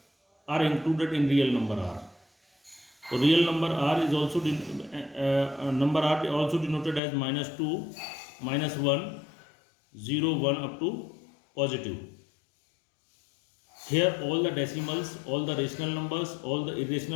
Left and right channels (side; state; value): right; drops out; at 7.0 s